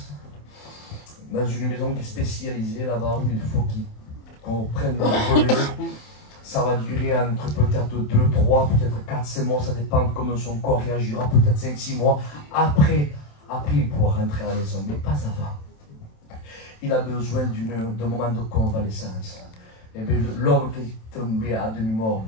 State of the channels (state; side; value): late; right; 27 ms